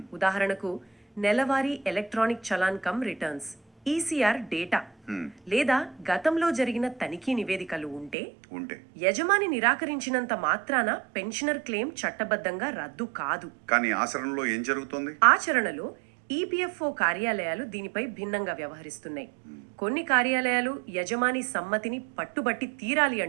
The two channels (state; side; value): drops out; left; at 8.2 s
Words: ఉదాహరణకు నెలవారీ electronic challan cum returns ECR data లేదా గతంలో జరిగిన తనిఖీ నివేదికలు ఉంటే యజమాని నిరాకరించినంత మాత్రాన పెన్షనర్ క్లెయిమ్ చట్టబద్ధంగా రద్దు కాదు. కానీ ఆచరణలో ఏం జరుగుతుంది? ఆచరణలో ఈపీఎఫ్ఓ కార్యాలయాలు దీనిపై భిన్నంగా వ్యవహరిస్తున్నాయి. కొన్ని కార్యాలయాలు యజమాని సమ్మతిని పట్టుబట్టి తీరాలి